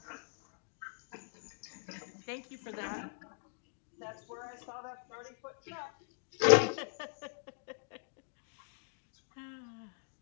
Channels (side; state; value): right; silent; digital silence